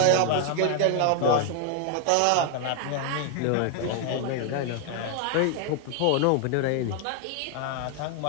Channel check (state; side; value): different; both; correlation 0.00